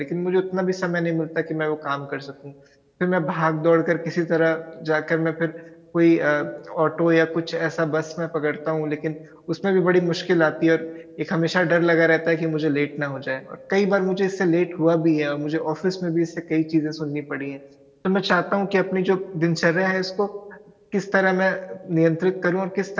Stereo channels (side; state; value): both; identical; correlation 1.00